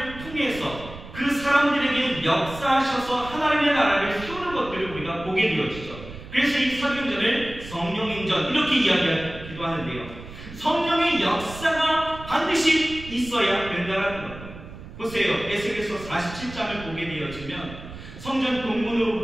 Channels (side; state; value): right; noise; rumble, 14 dB below the sound